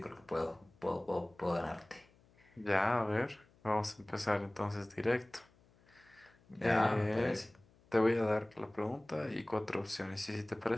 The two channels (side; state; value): left; noise; hum, 30 dB below the sound